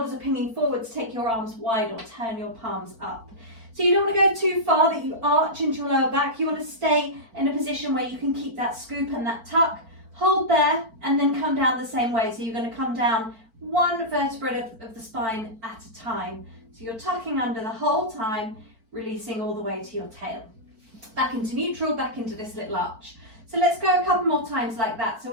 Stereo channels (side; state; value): left; late; 4.5 ms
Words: are pinging forwards, take your arms wide or turn your palms up. So you don't want to go too far that you arch into your lower back. You want to stay in a position where you can keep that scoop and that tuck. Hold there and then come down the same way. So you're going to come down one vertebra of the spine at a time. So you're tucking under the whole time, releasing all the way to your tail. Back into neutral, back into this little arch. So let's go a couple more times like that. So